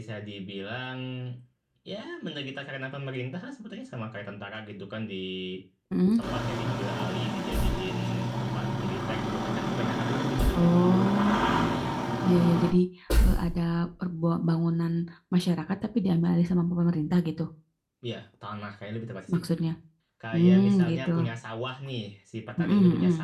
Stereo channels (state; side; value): identical; both; correlation 1.00